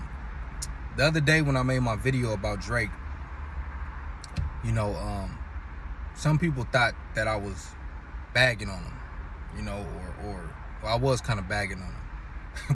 other day when I made my video about Drake, some people thought that I was bagging on him, or I was kind of bagging on him.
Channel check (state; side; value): identical; both; correlation 1.00